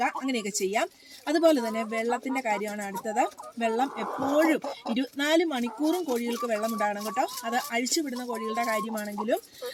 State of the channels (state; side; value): identical; both; correlation 1.00